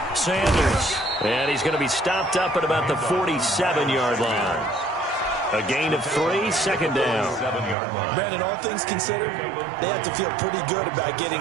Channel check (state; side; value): drops out; left; at 7.8 s